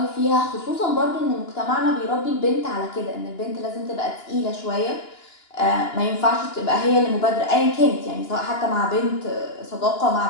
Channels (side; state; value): right; late; 2.9 ms